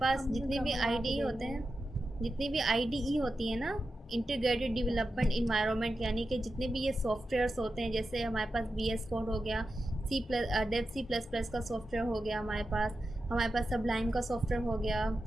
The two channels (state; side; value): normal; both; correlation 0.91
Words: जितने भी IDE होते हैं, जितनी भी IDE होती है ना, इंटीग्रेटेड डेवलपमेंट इन्वायरमेंट, यानी कि जितने भी ये सॉफ्टवेयर्स होते हैं, जैसे हमारे पास VS कोड हो गया, C++ का सॉफ्टवेयर हो गया हमारे पास सबलाइन का सॉफ्टवेयर हो गया,